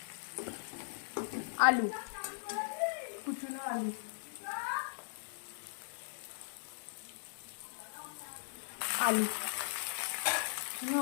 আলু, কুচনো আলু।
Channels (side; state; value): right; silent; 52 dB below the other